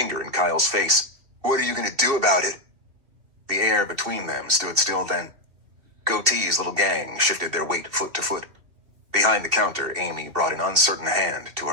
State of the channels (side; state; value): left; late; 2.5 ms